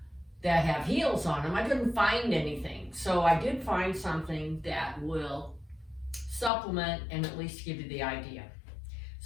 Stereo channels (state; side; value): drops out; right; at 6.5 s